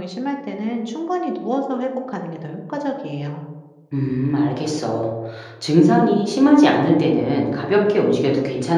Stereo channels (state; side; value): identical; both; correlation 1.00